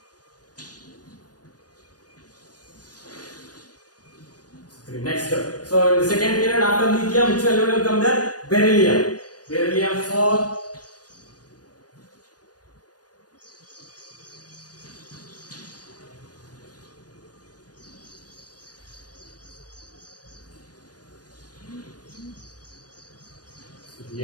3. Next. So in the second period after lithium, which element will come there? Beryllium. Beryllium 4. So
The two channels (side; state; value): right; late; 0.69 ms